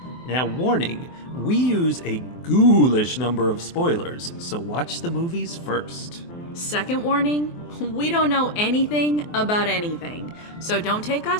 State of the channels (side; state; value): right; late; 24 ms